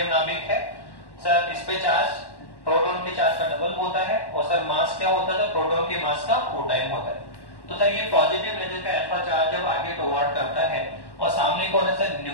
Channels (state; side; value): late; right; 1.1 ms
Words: नाभिक है सर, इस पे चार्ज प्रोटॉन के चार्ज का डबल होता है, और सर मास क्या होता है, तो प्रोटॉन के मास का 4 टाइम होता है। तो सर ये पॉजिटिव लेजर का अल्फा चार्ज जब आगे टुवर्ड करता है, और सामने कौन है सर,